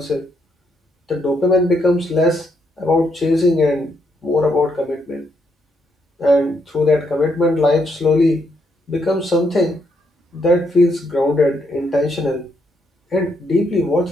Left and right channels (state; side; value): normal; both; correlation 0.76